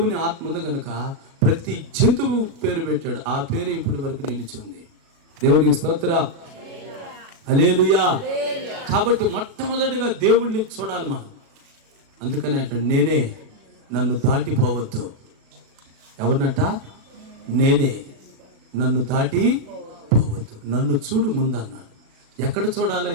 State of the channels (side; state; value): left; late; 37 ms